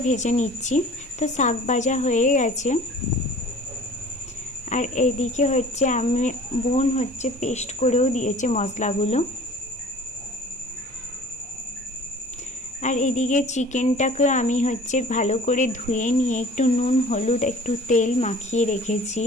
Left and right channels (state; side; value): normal; both; correlation 0.47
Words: ভেজে নিচ্ছি। তো শাক ভাজা হয়ে গেছে, আর এইদিকে হচ্ছে বোন হচ্ছে পেস্ট করেও দিয়েছে মশলাগুলো। আর এদিকে চিকেনটাকে আমি হচ্ছে ভালো করে ধুয়ে নিয়ে একটু নুন হলুদ একটু তেল মাখিয়ে রেখেছি।